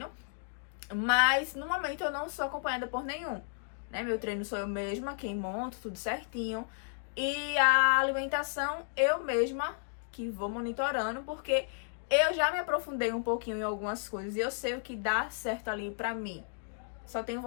Mas no momento eu não sou acompanhada por nenhum, né? Meu treino sou eu mesma quem monto, tudo certinho. E a alimentação eu mesma que vou monitorando, porque eu já me aprofundei um pouquinho em algumas coisas e eu sei o que dá certo ali pra mim. Só tenho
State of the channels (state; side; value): silent; right; digital silence